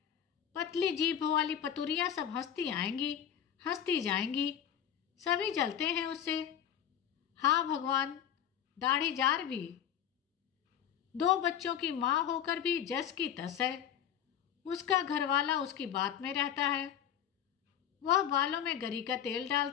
पतली जीभ वाली पतुरिया सब हंसती आएंगी, हंसती जाएंगी। सभी जलते हैं उससे। हाँ भगवान, दाढ़ी जार भी। 2 बच्चों की माँ होकर भी जस की तस है। उसका घरवाला उसकी बात में रहता है। वह बालों में गरी का तेल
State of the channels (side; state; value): right; quieter; 9.5 dB